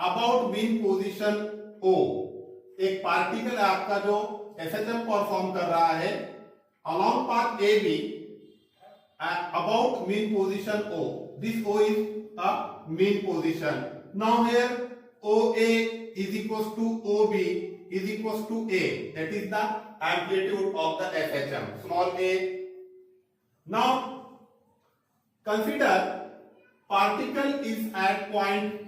about mean position O। एक पार्टिकल है आपका जो SHM perform कर रहा है along path AB about mean position O. This O is a mean position. Now here OA is equals to OB is equals to A. That is the amplitude of the SHM, small a. Now consider particle is at point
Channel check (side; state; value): both; identical; correlation 1.00